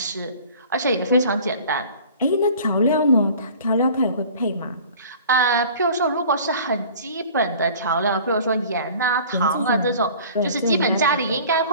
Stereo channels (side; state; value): both; inverted; correlation -0.46